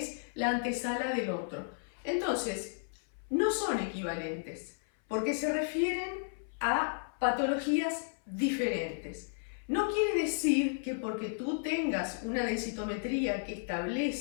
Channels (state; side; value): silent; right; 55 dB below the other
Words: la antesala del otro. Entonces, no son equivalentes, porque se refieren a patologías diferentes. No quiere decir que porque tú tengas una densitometría que